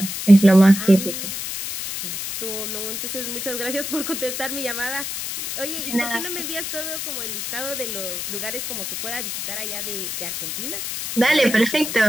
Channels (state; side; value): noise; left; hiss, 5 dB below the sound